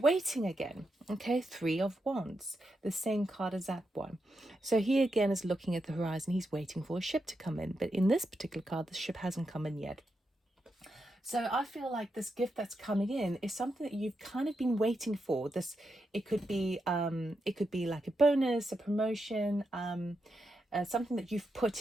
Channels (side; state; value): both; normal; correlation 0.85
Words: again. Okay, Three of Wands, the same card as that one. So he again is looking at the horizon. He's waiting for a ship to come in, but in this particular card, the ship hasn't come in yet. So I feel like this gift that's coming in is something that you've kind of been waiting for. This, it could be like a bonus, a promotion, something that you've